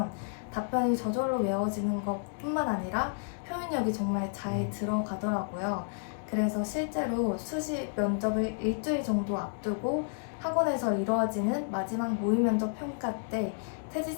답변이 저절로 외워지는 것뿐만 아니라 표현력이 정말 잘 들어가더라고요. 그래서 실제로 수시 면접을 일주일 정도 앞두고 학원에서 이루어지는 마지막 모의 면접 평가 때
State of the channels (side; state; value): right; silent; 57 dB below the other